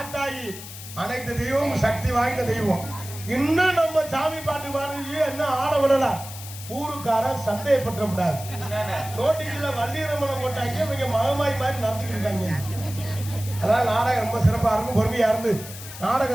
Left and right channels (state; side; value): noise; left; hiss, 13 dB below the sound